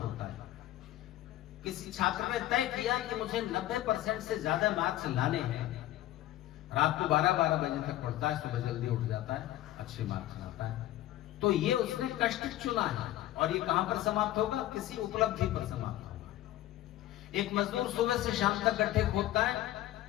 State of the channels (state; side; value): quieter; right; 14.6 dB